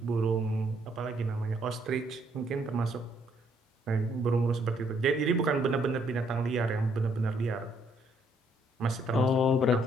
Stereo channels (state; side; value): normal; both; correlation 0.69